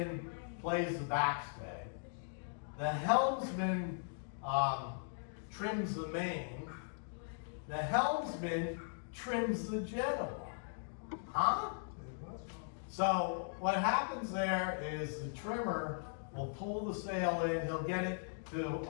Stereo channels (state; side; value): silent; right; digital silence